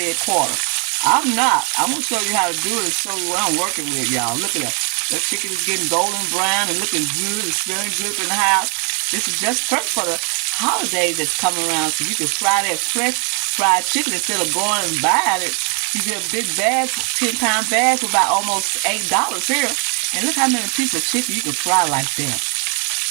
quarter. I'm not. I'm going to show you how to do it and show you what I'm working with, y'all. Look at that. That chicken is getting golden brown and looking good. It's smelling good up in the house. This is just perfect for the holidays that's coming around, so you can fry that fresh fried chicken instead of going and buying it. You get a big bag, 10-pound bag for about almost $8 here. And look how many pieces of chicken you can fry like that.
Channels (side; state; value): left; quieter; 37.9 dB